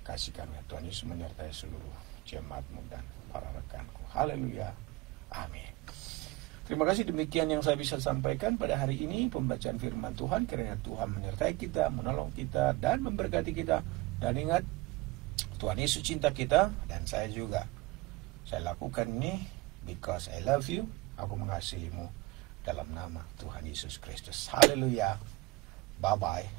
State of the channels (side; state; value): left; quieter; 20.7 dB